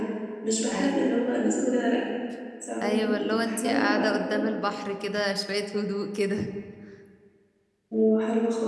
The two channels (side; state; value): both; identical; correlation 1.00